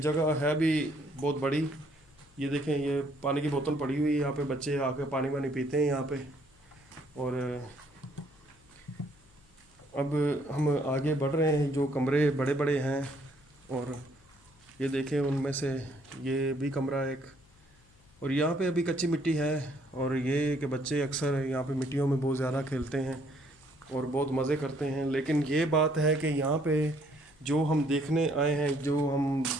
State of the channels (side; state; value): left; noise; hum, 30 dB below the sound